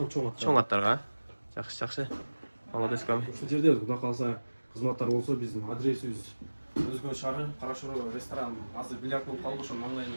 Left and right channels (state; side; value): inverted; both; correlation -1.00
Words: чоң аттар. Чоң аттарға. Жақсы. Молодец көм. Осы жерде құда қалса қызматтар болса біздің адресіміз Өзгөн шары, Қарашоры ресторан, азыр бильярд болып қалды, ошо